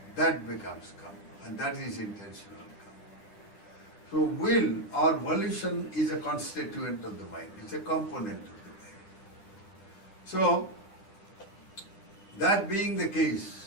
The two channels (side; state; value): right; late; 10 ms